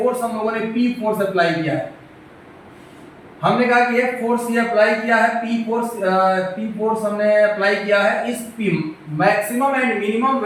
हम लोगों ने P फोर्स अप्लाई किया है। हमने कहा कि एक फोर्स ये अप्लाई किया है, P फोर्स हमने अप्लाई किया है। इस P maximum and minimum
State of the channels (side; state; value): both; identical; correlation 1.00